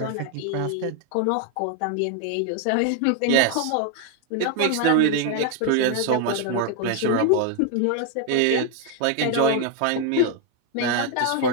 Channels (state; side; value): different; both; correlation 0.01